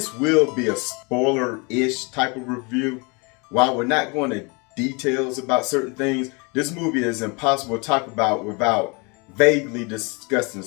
will be a spoiler-ish type of review. While we're not going to details about certain things, this movie is impossible to talk about without vaguely discussing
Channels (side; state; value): right; quieter; 30.4 dB